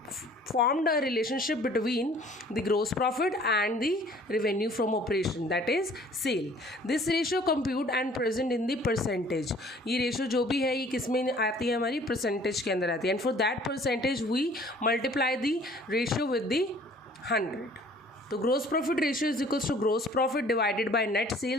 formed a relationship between the gross profit and the revenue from operation, that is sale. This ratio compute and present in the percentage. ये ratio जो भी है ये किस में आती है, हमारी परसेंटेज के अंदर आती है, and for that percentage we multiply the ratio with the 100. So gross profit ratio is equals to gross profit divided by net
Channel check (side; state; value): both; normal; correlation 0.53